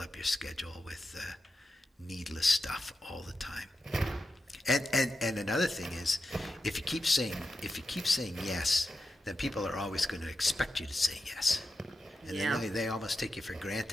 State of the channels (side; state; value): both; normal; correlation 0.89